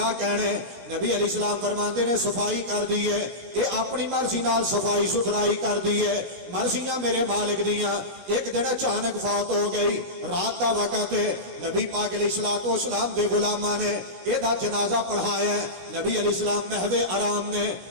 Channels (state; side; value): late; left; 17 ms